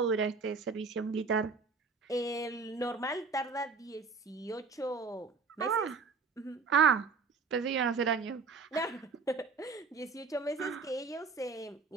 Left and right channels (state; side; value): quieter; left; 4.7 dB